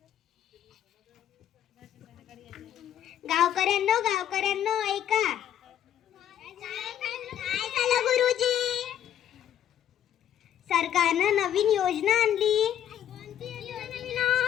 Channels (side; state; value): right; quieter; 10.5 dB